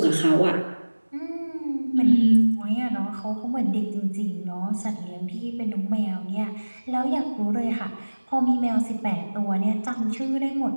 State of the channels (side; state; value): both; inverted; correlation -1.00